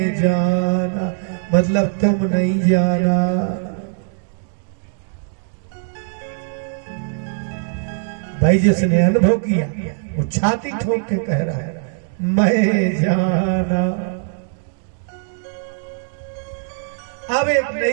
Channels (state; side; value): silent; left; digital silence